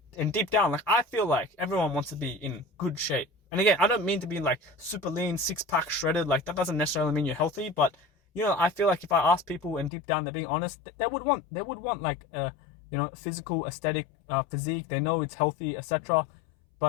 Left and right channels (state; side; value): drops out; right; at 9.9 s